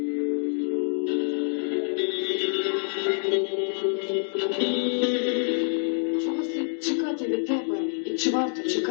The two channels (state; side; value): silent; right; digital silence